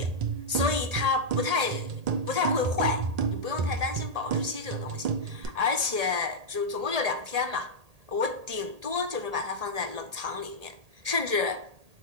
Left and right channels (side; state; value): left; late; 1.8 ms